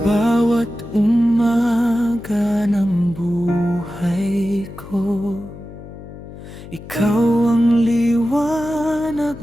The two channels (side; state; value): left; noise; hum, 15 dB below the sound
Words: bawat umaga ng buhay ko, ikaw ang liwanag